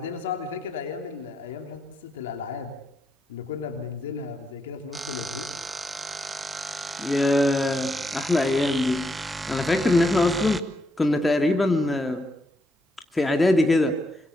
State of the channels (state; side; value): normal; both; correlation 0.80